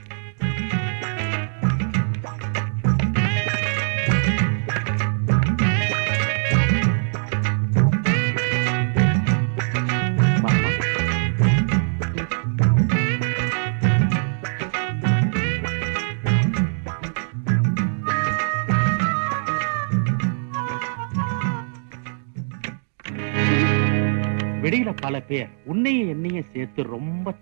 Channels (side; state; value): left; silent; digital silence